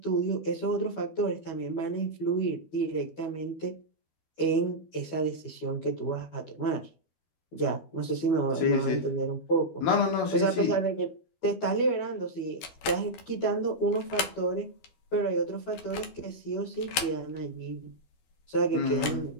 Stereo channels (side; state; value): right; late; 12 ms